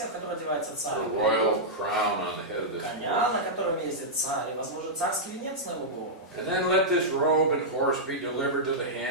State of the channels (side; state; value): both; normal; correlation -0.10